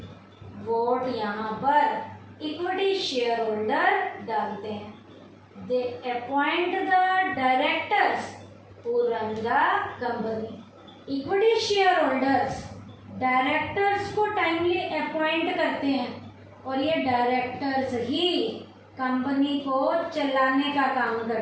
वोट यहाँ पर इक्विटी शेयर होल्डर डालते हैं। They appoint the directors who run the company। Equity share holders directors को टाइमली अपॉइंट करते हैं और ये डायरेक्टर्स ही कंपनी को चलाने का काम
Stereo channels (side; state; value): both; identical; correlation 1.00